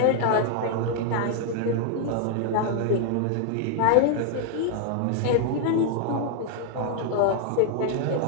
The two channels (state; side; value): different; both; correlation -0.01